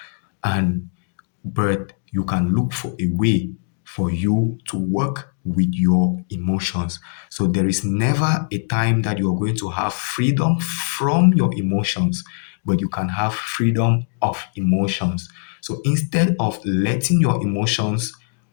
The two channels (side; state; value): right; silent; digital silence